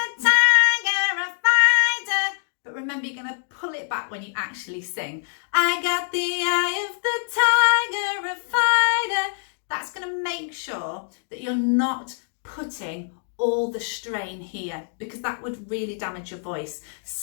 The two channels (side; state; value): right; silent; digital silence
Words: tiger, a fighter. But remember, you're going to pull it back when you actually sing. I got the eye of the tiger, a fighter. That's going to make sure that you're not putting all the strain here, because that would really damage your voice.